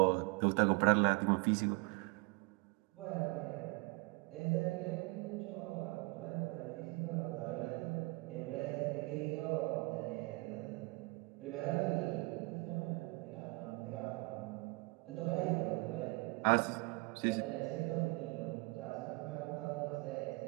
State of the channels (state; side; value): quieter; left; 26.6 dB